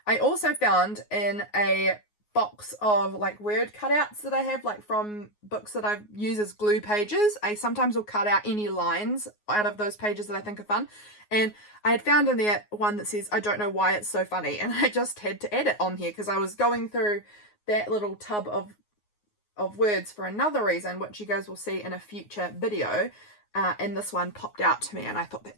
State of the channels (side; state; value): right; late; 9.5 ms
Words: I also found in a box of like word cutouts that I have, like from books that I use as glue pages. I sometimes will cut out any lines out of those pages that I think are fun, and I had found in there one that says, I don't know why it's so funny, and I just had to add it on here because I was going through that little tub of words for another reason, which you guys will see in a future video. and this one popped out to me, and I thought